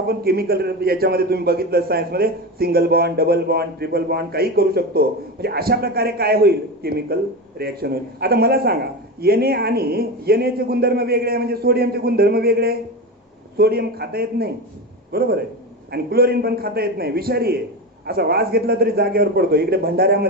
केमिकल याच्यामध्ये तुम्ही बघितलं सायन्समध्ये single bond, double bond, triple bond काही करू शकतो. म्हणजे अशा प्रकारे काय होईल? केमिकल रिॲक्शन होईल. आता मला सांगा, Na आणि Na चे गुणधर्म वेगळे आहे, म्हणजे सोडियमचे गुणधर्म वेगळे. सोडियम खाता येत नाही, बरोबर आहे, आणि क्लोरीन पण खाता येत नाही, विषारी आहे. असा वास घेतला तरी जागेवर पडतो. इकडे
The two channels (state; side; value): normal; both; correlation 0.22